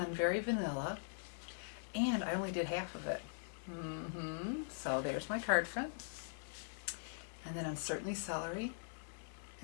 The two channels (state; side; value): silent; right; digital silence